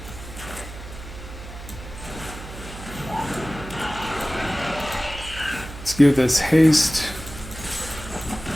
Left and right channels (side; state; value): right; noise; hum, 12 dB below the sound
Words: let's give this haste.